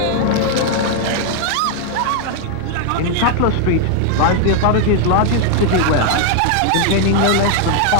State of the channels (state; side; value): different; both; correlation 0.00